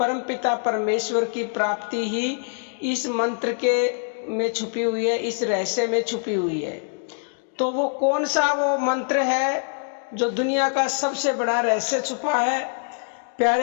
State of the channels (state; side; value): silent; right; digital silence